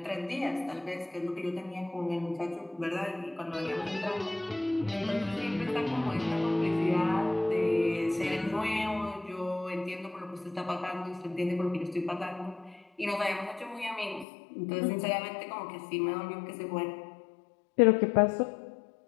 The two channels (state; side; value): drops out; right; at 14.2 s